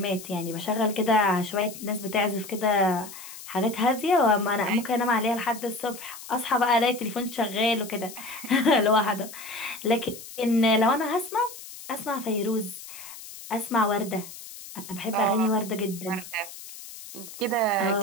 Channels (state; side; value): noise; left; hiss, 14 dB below the sound